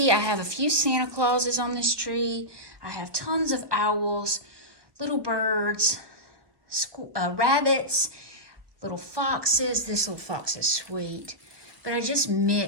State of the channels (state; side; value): late; left; 1.2 ms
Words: I have a few Santa Clauses on this tree. I have tons of owls, little birds, rabbits, little foxes. This little fox is sweet. But I just